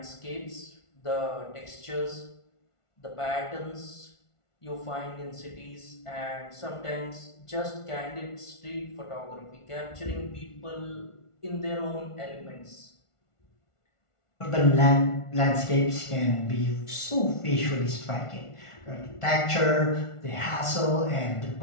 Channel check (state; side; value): late; right; 1.5 ms